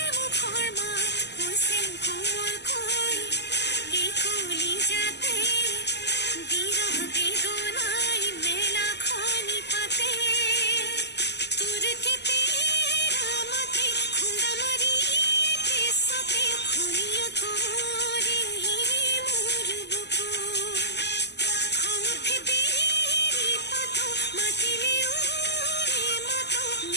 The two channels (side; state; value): right; late; 0.50 ms